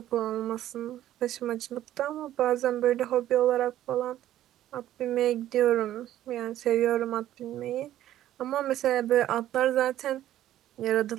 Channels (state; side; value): quieter; left; 12.8 dB